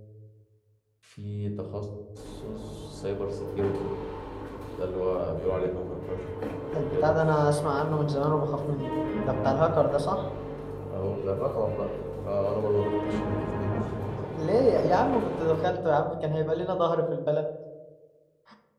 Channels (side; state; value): both; identical; correlation 1.00